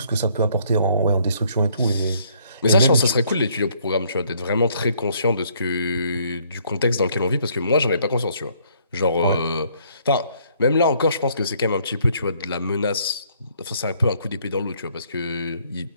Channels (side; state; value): both; inverted; correlation -0.66